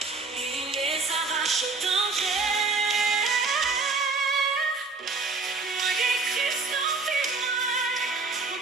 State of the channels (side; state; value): left; quieter; 4.1 dB